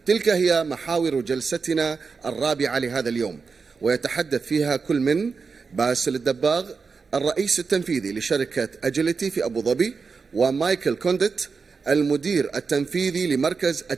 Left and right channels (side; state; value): left; quieter; 5.0 dB